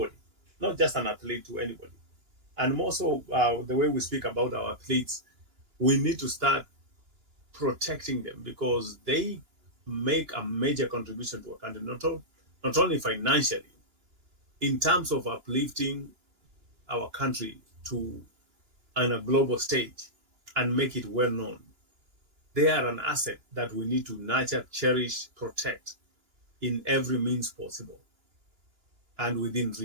not just an athlete, to anybody. And more so, the way we speak about our athletes, we need to start protecting them, because they make a major contribution to a country, not only financially, in terms of uplifting our country to on a global stage and make it well known. They are an asset that we need to nurture, cherish, protect in every means possible and within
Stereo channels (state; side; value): late; left; 2.9 ms